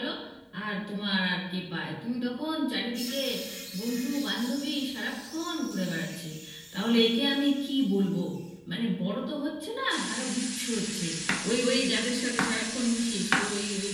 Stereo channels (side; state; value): both; identical; correlation 1.00